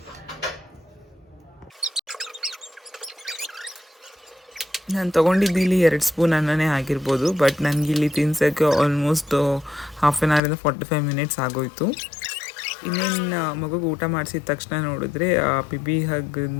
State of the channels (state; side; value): drops out; right; at 10.4 s